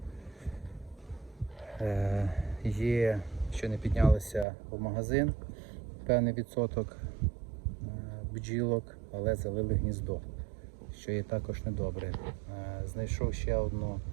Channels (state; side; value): drops out; left; at 4.5 s